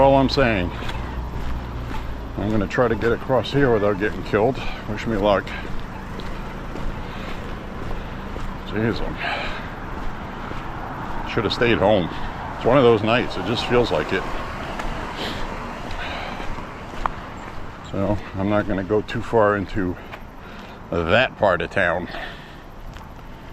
I'm saying. I'm going to try to get across here without getting killed. Wish me luck. Jeez, I should have stayed home. It's one of those nights. It just feels like it. So I'm not going to go too far into that part of town.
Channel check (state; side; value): identical; both; correlation 1.00